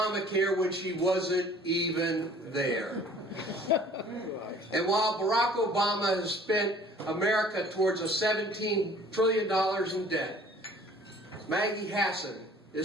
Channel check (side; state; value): both; normal; correlation 0.52